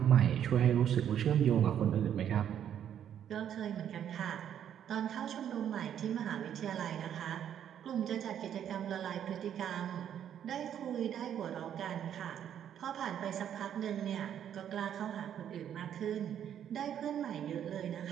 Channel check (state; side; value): quieter; left; 9.6 dB